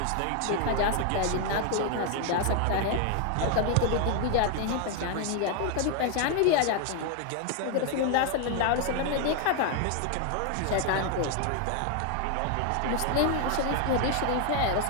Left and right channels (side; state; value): both; different; correlation 0.01